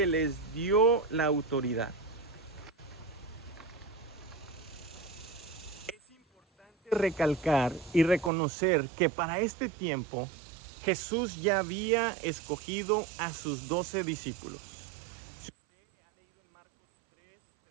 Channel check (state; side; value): drops out; left; at 8.3 s